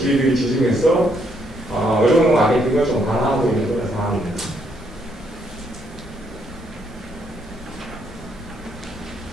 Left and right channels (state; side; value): normal; both; correlation 0.73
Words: 지정해서 의료관광 마케팅을 좀 강화하고 있는 그런 상황입니다.